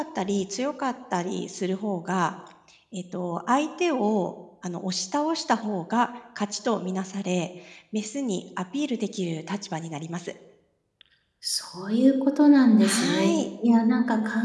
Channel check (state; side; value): identical; both; correlation 1.00